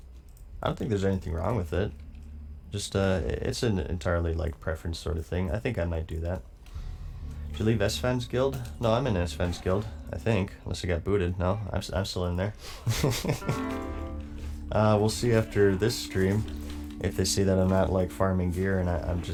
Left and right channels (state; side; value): identical; both; correlation 1.00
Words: don't think there's anything wrong with it. Just, it's an entirely, like, preference sort of thing. I think I might do that. Did you leave S-Fans Guild? No, I'm in S-Fans Guild, I think. Unless I got booted. No, I'm still in there. We'll see after this stream if they see that I'm not, like, farming gear and I'm